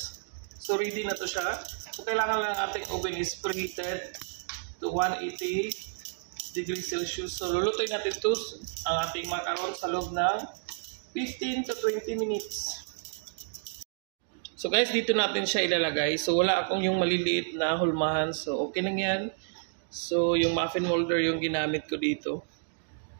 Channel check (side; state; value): left; silent; digital silence